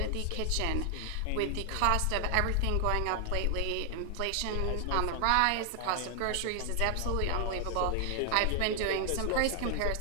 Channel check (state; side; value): different; both; correlation 0.00